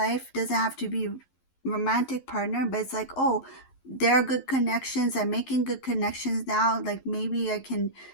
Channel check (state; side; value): late; right; 11 ms